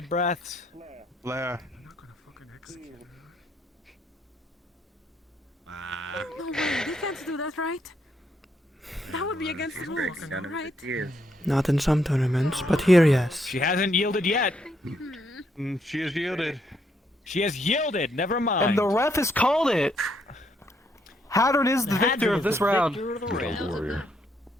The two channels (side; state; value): both; normal; correlation 0.74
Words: breaths. Blair. No way, they can't do that, right? That would be against the rules, right? Not in some tournaments, but here, yes. She hasn't yielded yet. She has yielded. She has yielded. Never mind. And the ref has called it. Hadron is the victor of this round.